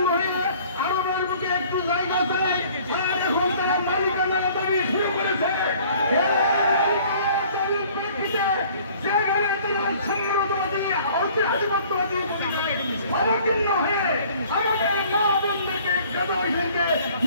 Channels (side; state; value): both; inverted; correlation -0.54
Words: হয়ে আরবের বুকে একটু জায়গা দেয় আর এখন তারা মালিকানার দাবি শুরু করেছে। অবতীর্ণ হয়ে আমাদের মা বোনদেরকে গ্রামবাসীকে